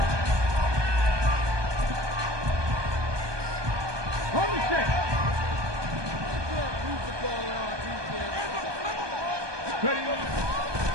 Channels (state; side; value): late; left; 1.2 ms